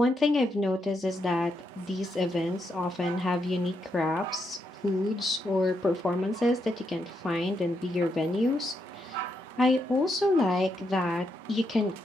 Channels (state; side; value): normal; both; correlation 0.80